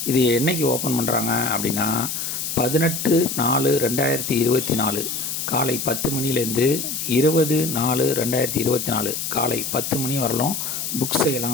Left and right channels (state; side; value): noise; left; hiss, 4 dB below the sound